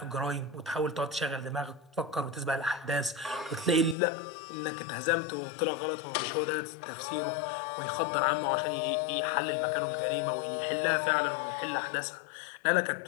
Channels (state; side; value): drops out; right; at 4.0 s